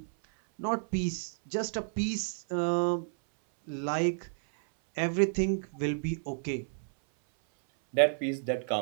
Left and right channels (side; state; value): left; silent; 57 dB below the other